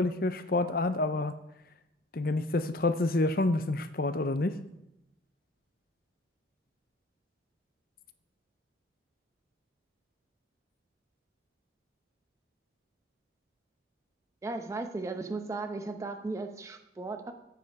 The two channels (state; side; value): normal; both; correlation 0.50